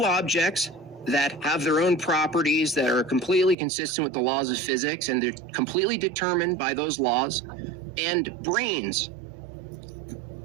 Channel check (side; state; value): left; drops out; at 3.6 s